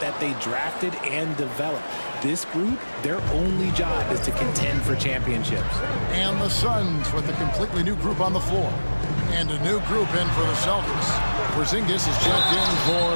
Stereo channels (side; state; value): both; inverted; correlation -1.00